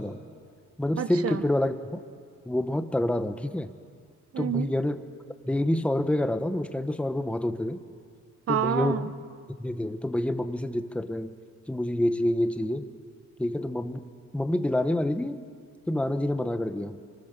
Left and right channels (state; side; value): normal; both; correlation 0.86